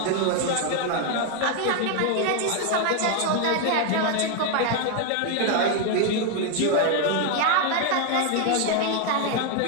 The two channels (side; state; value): both; different; correlation 0.01